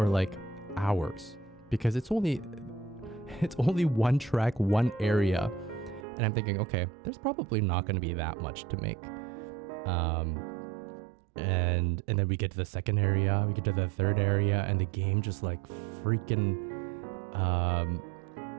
like hours because it's only one track, one area. And I'm thinking, okay, there's probably not going to be that much to make. And then we get to the second area, we get to the third area, and the game just like freaking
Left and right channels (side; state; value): left; drops out; at 6.1 s